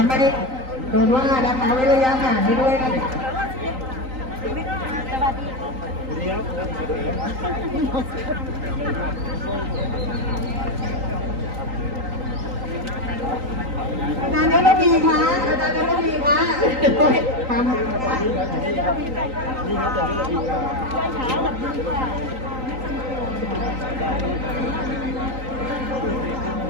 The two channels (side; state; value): left; late; 3.9 ms